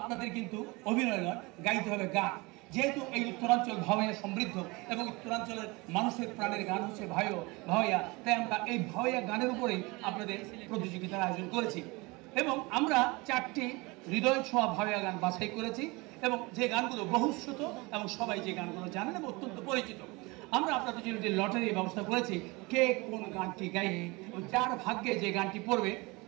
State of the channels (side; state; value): left; quieter; 25.0 dB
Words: কিন্তু অভিনয় নয়, গাইতে হবে গান। যেহেতু এই উত্তরাঞ্চল ভাওয়াইয়া সমৃদ্ধ এবং উত্তরাঞ্চলের মানুষের প্রাণের গান হচ্ছে ভাওয়াইয়া, তাই আমরা এই ভাওয়াইয়া গানের উপরেই আপনাদের প্রতিযোগিতার আয়োজন করেছি এবং আমরা 4টি হৃদয় ছোঁয়া ভাওয়াইয়া গান বাছাই করেছি এবং যে গানগুলো বহুশ্রুত এবং সবাই যে গানগুলো জানেন এবং অত্যন্ত পরিচিত। আমরা আপনাদের জন্য একটি লটারির ব্যবস্থা করেছি, কে কোন গানটি গাইবে এবং যার ভাগ্যে যে গানটি পড়বে